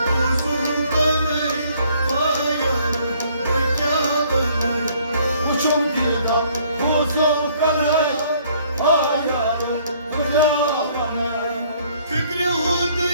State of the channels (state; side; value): inverted; both; correlation -0.61